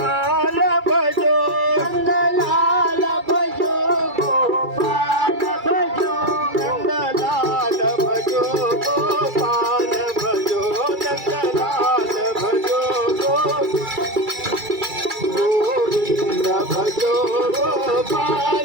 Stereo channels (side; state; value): left; late; 2.3 ms